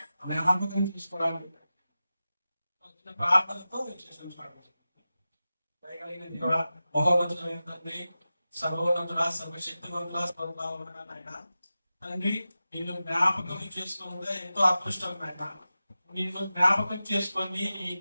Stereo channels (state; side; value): inverted; both; correlation -0.94